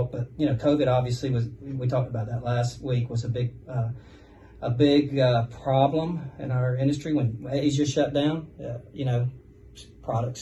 But COVID obviously we talked about that last week, was a big problem in our industry when Asia shut down. Products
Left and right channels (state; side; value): identical; both; correlation 1.00